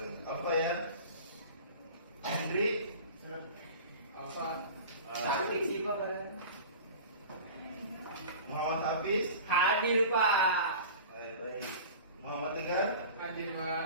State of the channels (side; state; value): both; inverted; correlation -0.37